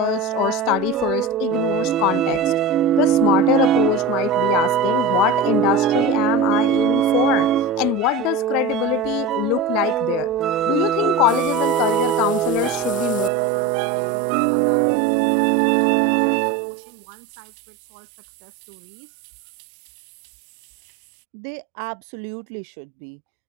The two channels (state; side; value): drops out; left; at 13.3 s